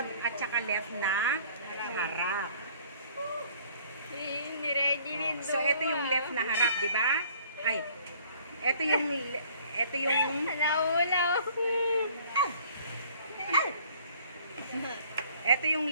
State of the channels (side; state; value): both; inverted; correlation -0.56